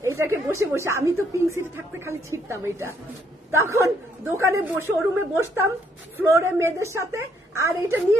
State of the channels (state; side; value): normal; both; correlation 0.70